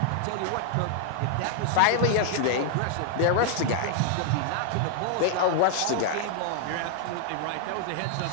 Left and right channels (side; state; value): both; different; correlation 0.00